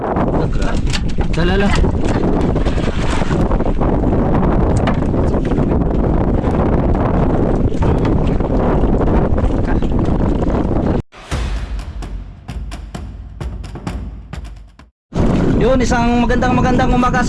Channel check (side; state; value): both; identical; correlation 1.00